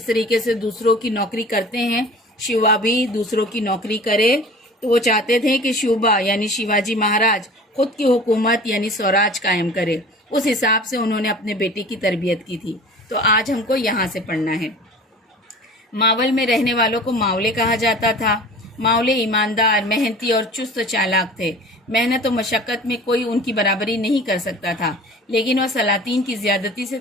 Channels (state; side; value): normal; both; correlation 0.41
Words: तरीके से दूसरों की नौकरी करते हैं, शिवा भी दूसरों की नौकरी करे। तो वो चाहते थे कि शिवा यानी शिवाजी महाराज खुद की हुकूमत यानी स्वराज कायम करे। उस हिसाब से उन्होंने अपने बेटे की तरबियत की थी। तो आज हमको यहाँ से पढ़ना है। मावल में रहने वालों को मावले कहा जाता था। मावले ईमानदार, मेहनती और चुस्त चालाक थे। मेहनत और मशक्क़त में कोई उनकी बराबरी नहीं कर सकता था, लेकिन वह सलातीन की ज़्यादती से